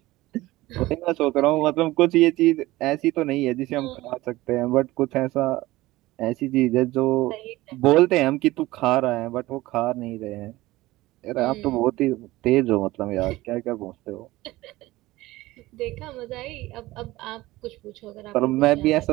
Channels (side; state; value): left; quieter; 18.4 dB